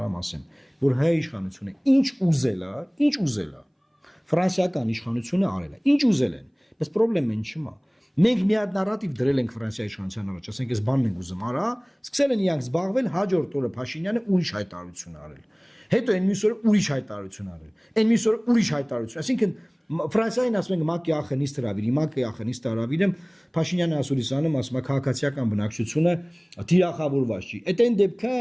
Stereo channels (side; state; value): both; identical; correlation 1.00